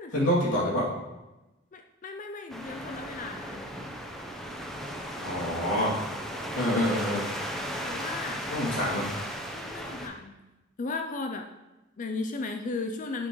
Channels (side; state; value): both; normal; correlation 0.35